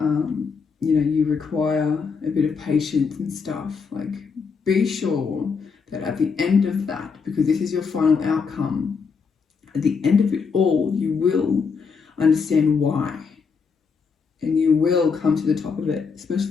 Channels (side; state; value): right; quieter; 5.4 dB